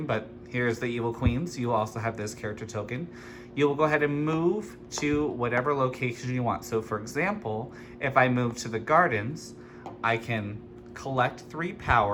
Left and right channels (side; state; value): both; identical; correlation 1.00